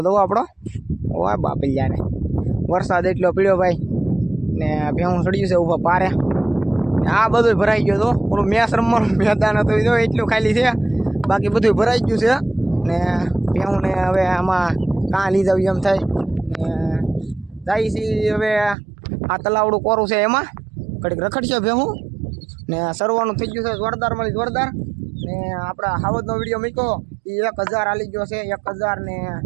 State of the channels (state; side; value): drops out; left; at 18.8 s